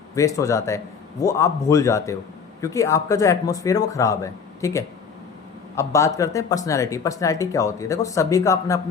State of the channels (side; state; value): right; quieter; 6.0 dB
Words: वेस्ट हो जाता है, वो आप भूल जाते हो, क्योंकि आपका जो एटमॉस्फेयर है वो ख़राब है। ठीक है, अब बात करते हैं पर्सनैलिटी। पर्सनैलिटी क्या होती है? देखो, सभी का अपना